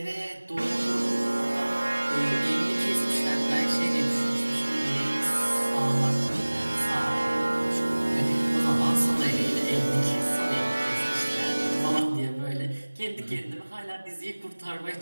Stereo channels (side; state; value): both; inverted; correlation -1.00